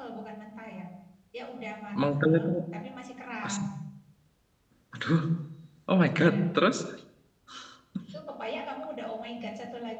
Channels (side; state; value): both; identical; correlation 1.00